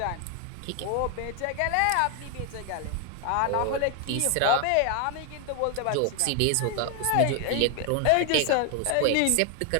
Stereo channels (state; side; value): different; both; correlation 0.00